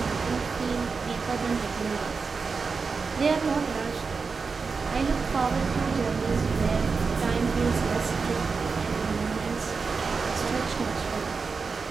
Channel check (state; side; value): quieter; left; 4.8 dB